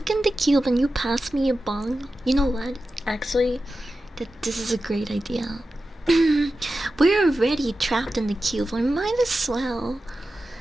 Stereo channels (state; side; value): normal; both; correlation 0.93